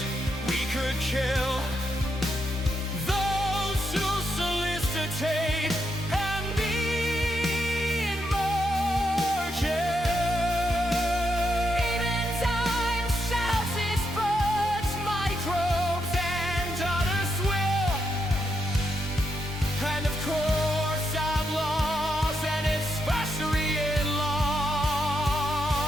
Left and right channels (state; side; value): normal; both; correlation 0.81